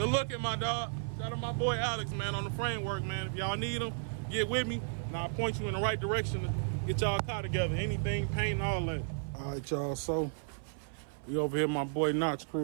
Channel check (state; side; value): silent; left; 55 dB below the other